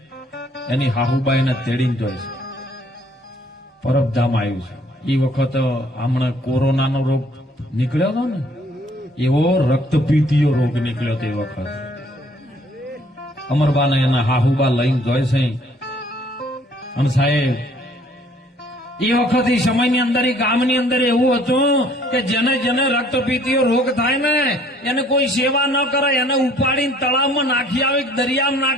એની હાહુબાઈને તેડીને જોઈ છે. પરબધામ આવ્યું છે. એ વખત હમણાં કોરોનાનો રોગ નીકળ્યો હતો ને, એવો રક્તપીતીયો રોગ નીકળ્યો તે વખત અમરબાને એના હાહુબા લઈને જોઈ છે. અને સાહેબ એ વખત એ સમયની અંદર એ ગામની અંદર એવું હતું કે જેને જેને રક્તપીતીયો રોગ થાય ને એને કોઈ સેવા ન કરે, એને ઉપાડીને તળાવમાં નાખી આવે, દરિયામાં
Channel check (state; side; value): normal; both; correlation 0.60